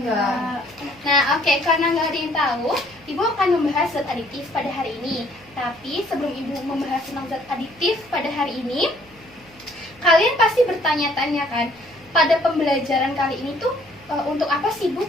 Nah, oke, karena nggak ada yang tahu, Ibu akan membahas zat aditif pada hari ini. Tapi sebelum Ibu membahas tentang zat aditif pada hari ini, kalian pasti bertanya-tanya kan, pada pembelajaran kali ini tuh untuk apa sih Bu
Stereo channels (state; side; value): noise; right; hum, 26 dB below the sound